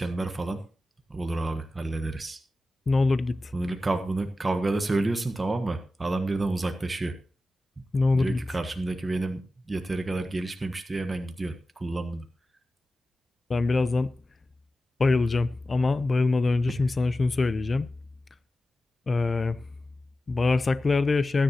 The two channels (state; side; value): normal; both; correlation 0.94